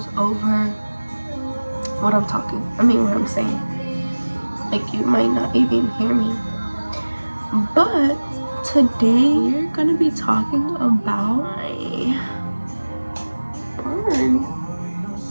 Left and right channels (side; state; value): both; inverted; correlation -1.00